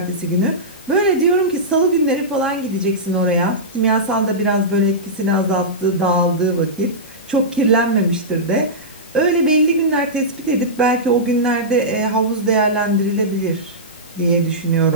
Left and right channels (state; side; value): normal; both; correlation -0.14